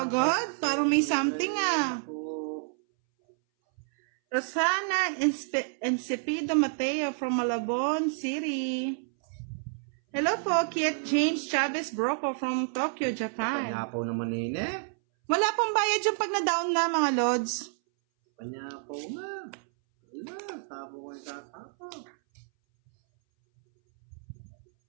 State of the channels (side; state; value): left; silent; 58 dB below the other